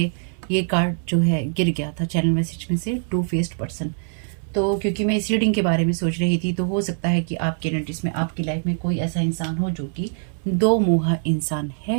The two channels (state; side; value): silent; left; 63 dB below the other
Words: ये कार्ड जो है गिर गया था चैनल मैसेज में से, टू फेस्ड पर्सन। तो क्योंकि मैं इस रीडिंग के बारे में सोच रही थी, तो हो सकता है कि आपके एनर्जीज में, आपकी लाइफ में कोई ऐसा इंसान हो जो कि दो मुहा इंसान